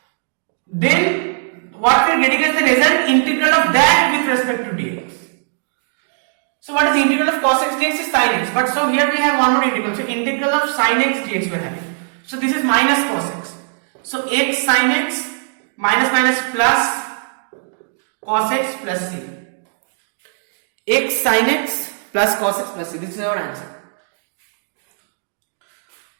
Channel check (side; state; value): left; silent; digital silence